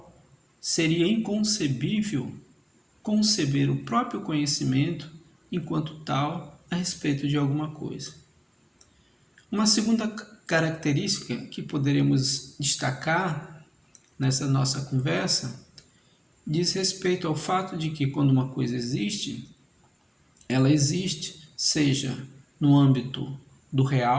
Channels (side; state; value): both; identical; correlation 1.00